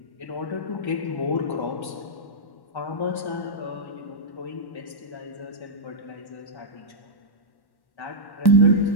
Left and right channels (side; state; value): right; late; 1.1 ms